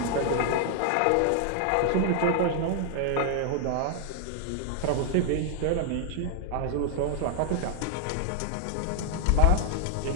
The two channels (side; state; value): both; different; correlation 0.00